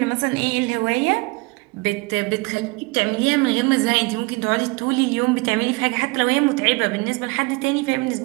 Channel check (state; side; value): quieter; left; 26.3 dB